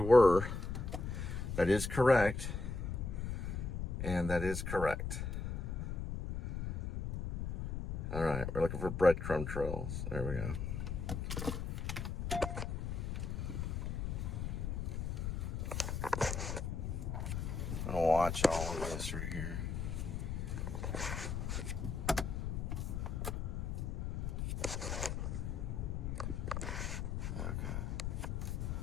That is correct. And that is correct. All right, we're looking for breadcrumb trails. There we go. I'm gonna watch all of this right here. Okay.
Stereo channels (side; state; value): left; noise; rumble, 3 dB below the sound